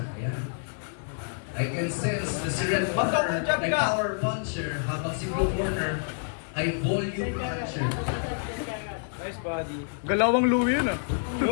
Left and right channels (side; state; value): right; silent; digital silence